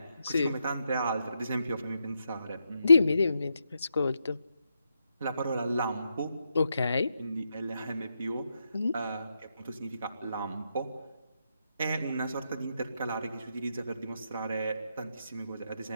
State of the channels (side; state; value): both; inverted; correlation -0.83